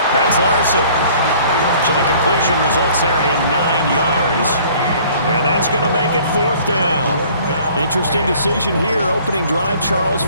That's Larson. So the completion results there in 9 yards. And that's going to make it fourth down. Interesting decision here. Opening drive, Charles,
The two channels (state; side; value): inverted; both; correlation -0.54